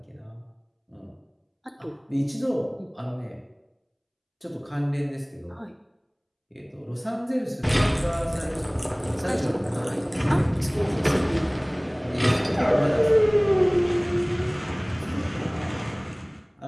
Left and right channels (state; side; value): identical; both; correlation 1.00